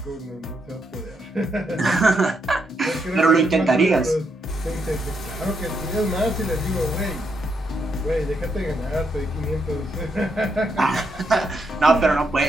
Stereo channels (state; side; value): normal; both; correlation 0.79